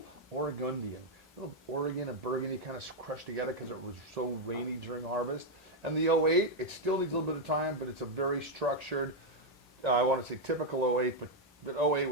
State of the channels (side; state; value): both; normal; correlation 0.00